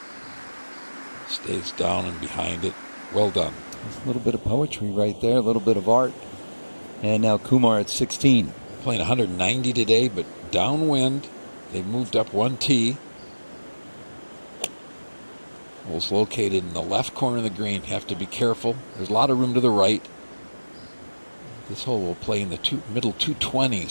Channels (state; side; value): inverted; both; correlation -1.00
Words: Stays down and behind it. Well done. There's a little bit of poetry right there, a little bit of art. And now Kumar at 16. Playing 190 today, but downwind. They moved up one tee. Hole's located in the left corner of the green. Have to be careful. There's a lot of room to the right. This hole will play in the middle